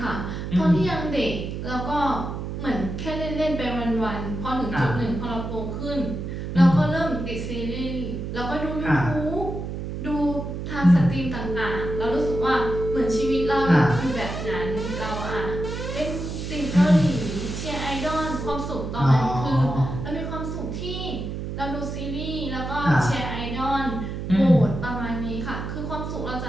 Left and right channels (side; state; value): right; noise; hum, 5 dB below the sound